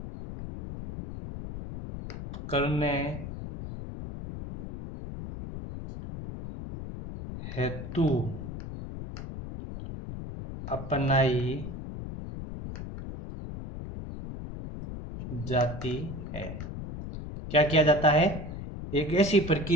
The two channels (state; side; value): noise; left; rumble, 9 dB below the sound